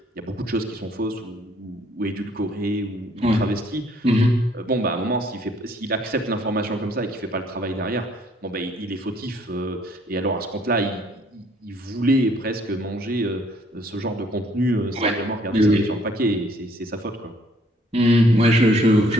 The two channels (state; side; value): normal; both; correlation 0.63